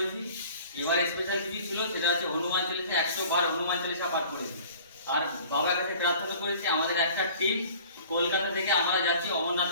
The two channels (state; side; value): inverted; both; correlation -0.47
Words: এবার স্পেশাল কিছু ছিল, সেটা হচ্ছে হনুমান চালিসা 100 বার হনুমান চালিসা পাঠ করেছি। আর বাবার কাছে প্রার্থনা করেছি আমাদের একটা টিম কলকাতা থেকে আমরা যাচ্ছি